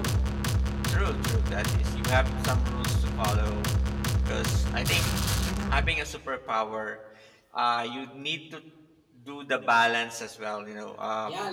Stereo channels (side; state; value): both; identical; correlation 1.00